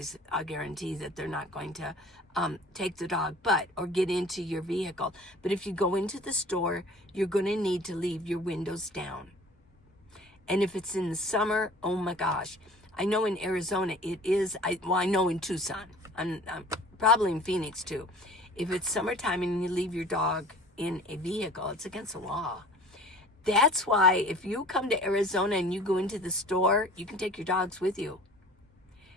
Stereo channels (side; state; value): both; normal; correlation 0.46